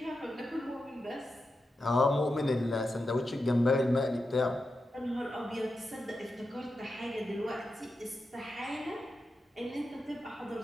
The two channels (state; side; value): normal; both; correlation 0.89